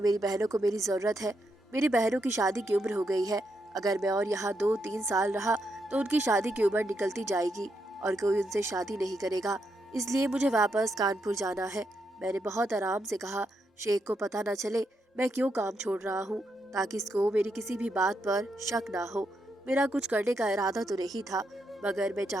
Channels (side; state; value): both; normal; correlation 0.81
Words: मेरी बहनों को मेरी जरूरत है। मेरी बहनों की शादी की उम्र हो गई है। अगर मैं और यहाँ 2-3 साल रहा तो उनकी शादी की उम्र निकलती जाएगी और कोई उनसे शादी नहीं करेगा। इसलिए मुझे वापस कानपुर जाना है। मैंने बहुत आराम से कहा, शेख को पता न चले मैं क्यों काम छोड़ रहा हूँ, ताकि इसको मेरी किसी भी बात पर शक ना हो। मेरा कुछ करने का इरादा तो नहीं था, मगर मैं